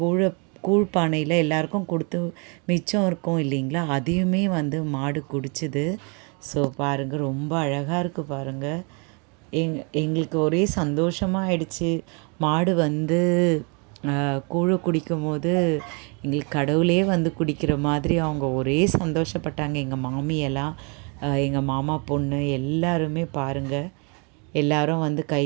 கூழ் பானையில் எல்லாருக்கும் கொடுத்து மிச்சம் இருக்கும் இல்லைங்களா, அதையுமே வந்து மாடு குடிச்சுது. ஸோ பாருங்கள் ரொம்ப அழகாக இருக்குது பாருங்கள். எங்களுக்கு ஒரே சந்தோஷமாக ஆயிடுச்சு. மாடு வந்து கூழை குடிக்கும் போது எங்களுக்கு கடவுளே வந்து குடிக்கிற மாதிரி அவங்க ஒரே சந்தோஷப்பட்டாங்க. எங்கள் மாமியெல்லாம், எங்கள் மாமா பொண்ணு எல்லாருமே பாருங்கள், எல்லோரும் வந்து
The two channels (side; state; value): left; quieter; 34.4 dB